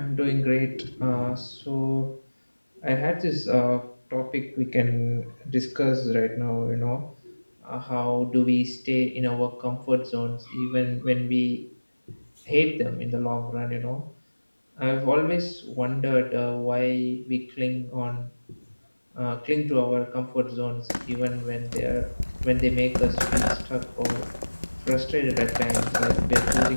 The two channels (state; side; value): inverted; both; correlation -1.00